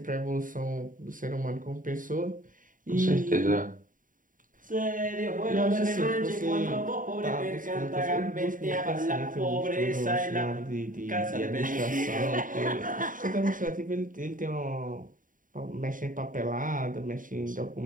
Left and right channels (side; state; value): left; late; 0.39 ms